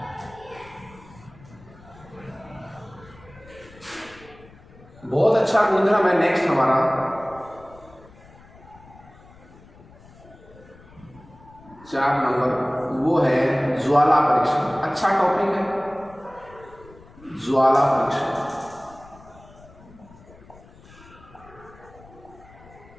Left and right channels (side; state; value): left; noise; rumble, 23 dB below the sound